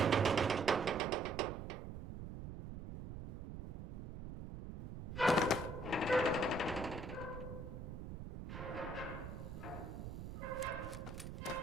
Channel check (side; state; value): right; noise; rumble, 8 dB below the sound